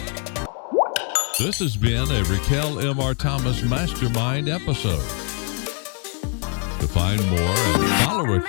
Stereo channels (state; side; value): quieter; right; 39.7 dB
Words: This has been a Raquel M.R. Thomas Mastermind episode. To find more and follow